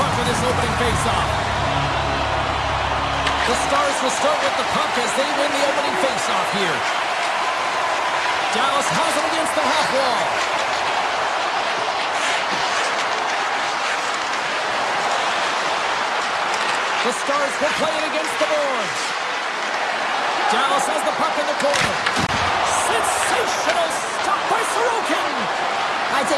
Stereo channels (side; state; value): both; identical; correlation 1.00